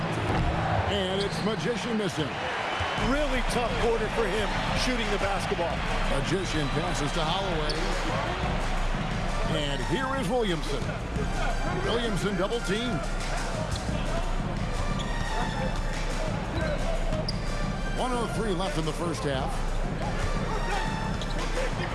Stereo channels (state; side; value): identical; both; correlation 1.00